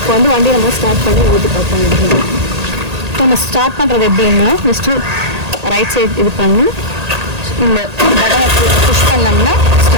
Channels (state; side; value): late; left; 1.8 ms